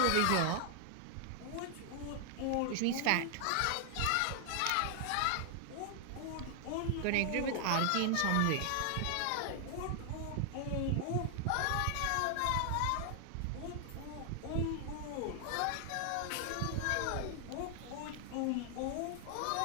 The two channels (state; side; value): different; both; correlation 0.00